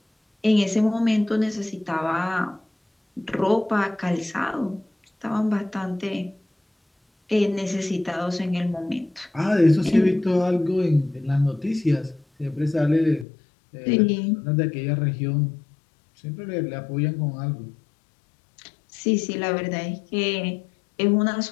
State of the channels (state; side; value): drops out; right; at 13.2 s